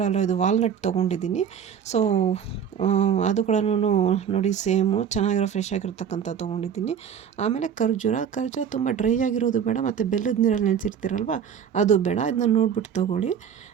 ಅಲ್ಲ, ಇದು ವಾಲ್ನಟ್ ತೊಗೊಂಡಿದ್ದೀನಿ. ಸೊ ಅದು ಕೂಡ ನೋಡಿ ಸೇಮು ಚೆನ್ನಾಗಿರೋ ಫ್ರೆಶ್ ಆಗಿರ್ತಕ್ಕಂಥ ತೊಗೊಂಡಿದ್ದೀನಿ. ಆಮೇಲೆ ಖರ್ಜೂರ ತುಂಬ ಡ್ರೈ ಆಗಿರೋದು ಬೇಡ, ಮತ್ತು ಬೆಲ್ಲದ ನೀರಲ್ಲಿ ನೆನೆಸಿರ್ತೀರಲ್ವ ಅದು ಬೇಡ. ಇದನ್ನ ನೋಡ್ಬಿಟ್ಟು ತೊಗೊಳ್ಳಿ,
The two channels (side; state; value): left; quieter; 8.0 dB